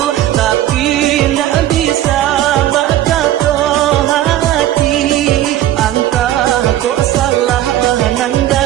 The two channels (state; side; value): quieter; left; 13.1 dB